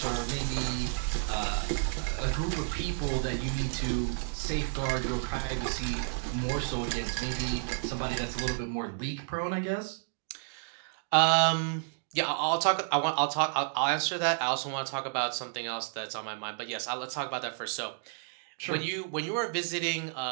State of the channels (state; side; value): silent; left; digital silence